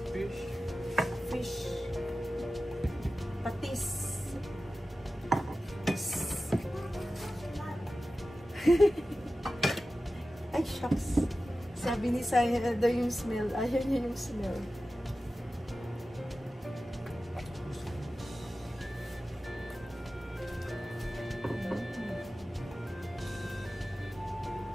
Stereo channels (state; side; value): normal; both; correlation 0.94